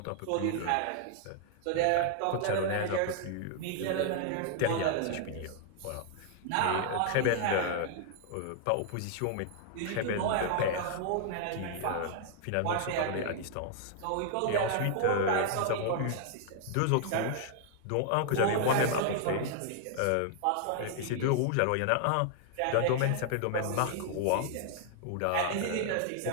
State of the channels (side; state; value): both; different; correlation 0.00